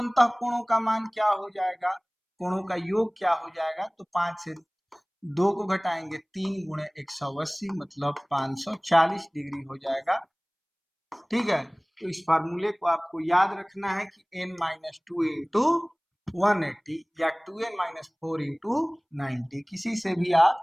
कोणों का मान क्या हो जाएगा, कोणों का योग क्या हो जाएगा, तो 5 से 2 को घटाएंगे 3 गुणे 180 मतलब 540 डिग्री हो जाएगा। ठीक है, तो इस फार्मूले को आपको याद रखना है कि n माइनस 2 इंटू 180 या 2n माइनस 4 इंटू 90, किसी से भी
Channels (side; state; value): both; identical; correlation 1.00